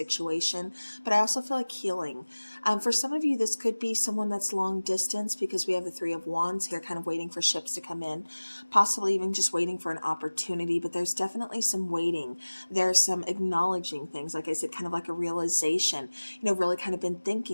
but I also feel like healing. For some of you, this could be someone that's long distance, because we have the Three of Wands here, kind of waiting for ships to come in, possibly even just waiting for an opportunity, but there's definitely some waiting. There's some acknowledging things, like I said, kind of like a realization, really kind of been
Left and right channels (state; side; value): inverted; both; correlation -1.00